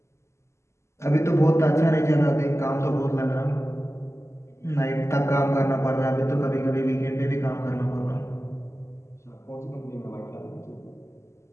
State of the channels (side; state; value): right; late; 0.13 ms